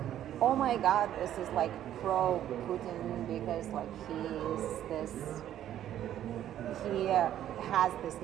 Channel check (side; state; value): left; quieter; 11.5 dB